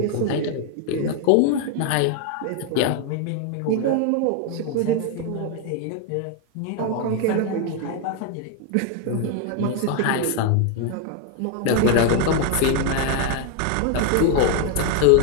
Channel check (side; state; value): both; different; correlation 0.01